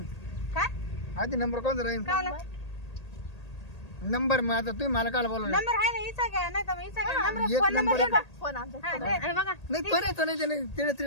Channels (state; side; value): late; right; 1.8 ms